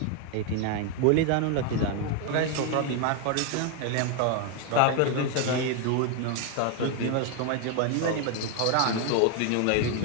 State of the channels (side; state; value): both; different; correlation 0.01